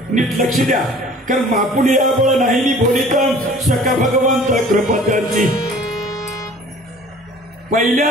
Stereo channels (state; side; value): normal; both; correlation 0.49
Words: नीट लक्ष द्या. कारण मापुली या बळ नाही बोलितम सका भगवंत कृपा त्यांची.